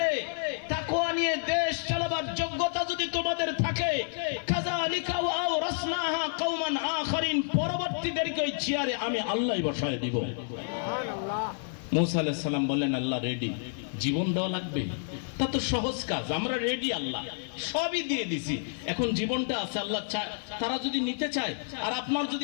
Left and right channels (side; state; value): right; silent; digital silence